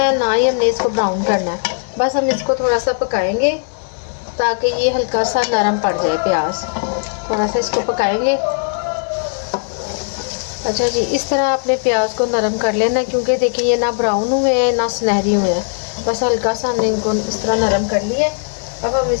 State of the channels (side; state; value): right; silent; digital silence